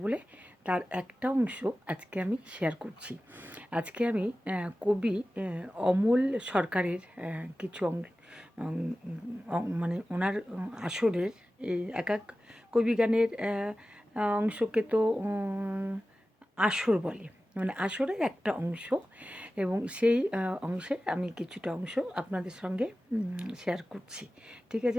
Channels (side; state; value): both; normal; correlation 0.95